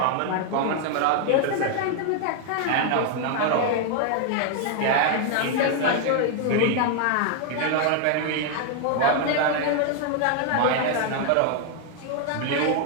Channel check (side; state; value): both; different; correlation 0.00